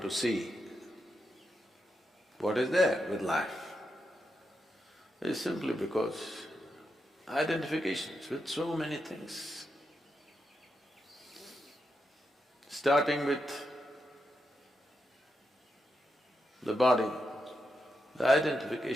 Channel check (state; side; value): normal; both; correlation 0.85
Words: see what is there with life is simply because identifications with so many things. Starting with the body, the